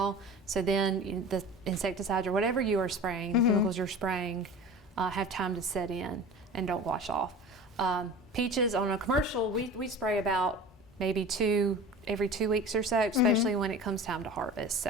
So then the insecticides or whatever you are spraying, the chemicals you're spraying, have time to set in and don't wash off. Peaches on a commercial, we spray about maybe every 2 weeks or so, especially when it comes time to harvest.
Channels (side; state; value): both; normal; correlation 0.37